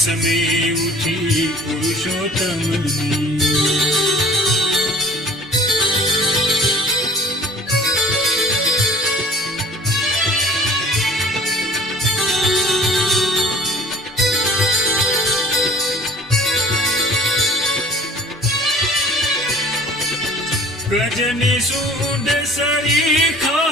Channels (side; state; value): both; normal; correlation 0.51